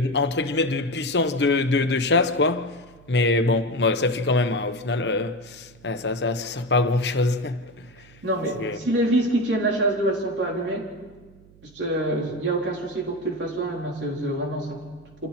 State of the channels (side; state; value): right; noise; hum, 26 dB below the sound